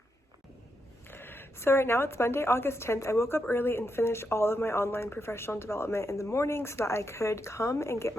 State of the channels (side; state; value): both; normal; correlation 0.83